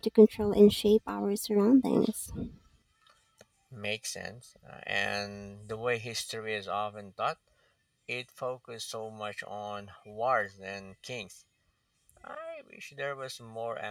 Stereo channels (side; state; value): both; identical; correlation 1.00